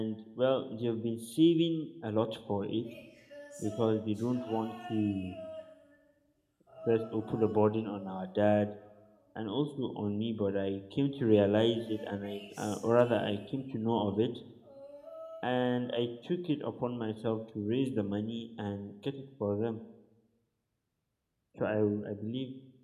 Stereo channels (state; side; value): identical; both; correlation 1.00